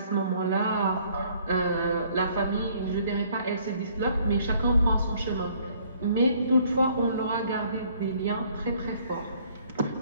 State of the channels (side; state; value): both; inverted; correlation -0.62